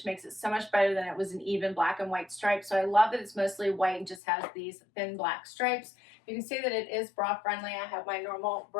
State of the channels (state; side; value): drops out; right; at 4.2 s